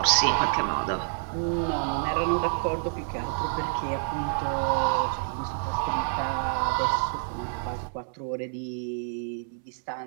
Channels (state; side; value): silent; left; 59 dB below the other